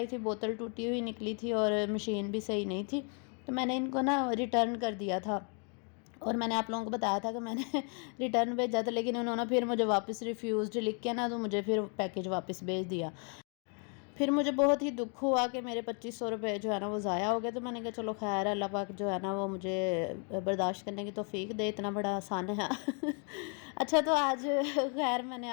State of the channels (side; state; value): right; quieter; 39.4 dB